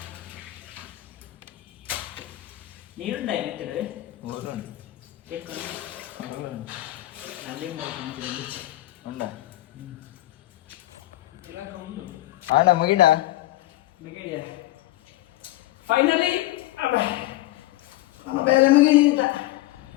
ನೀರುಂಡ ಏನಿತ್ತು ಆಡ ಮುಗಿಡ ಫೈನಲಿ ನಮ್ಮ ಬೇರೆ ಮುಗಿದ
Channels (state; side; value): quieter; right; 16.9 dB